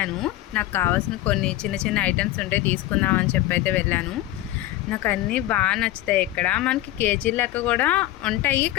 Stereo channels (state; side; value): quieter; right; 15.1 dB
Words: నాకు కావాల్సిన కొన్ని చిన్న చిన్న ఐటమ్స్ ఉంటే తీసుకుందామని చెప్పి అయితే వెళ్ళాను. నాకు అన్నీ బాగా నచ్చుతాయి. ఇక్కడ మనకి కేజీ లెక్క కూడా ఉంటాయి,